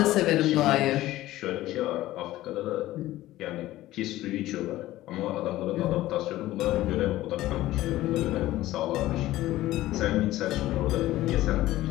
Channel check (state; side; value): quieter; right; 15.8 dB